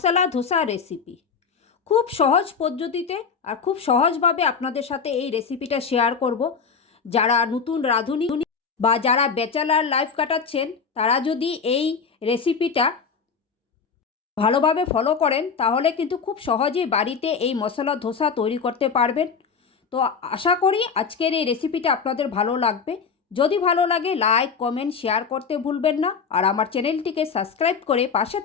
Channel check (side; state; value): right; quieter; 5.7 dB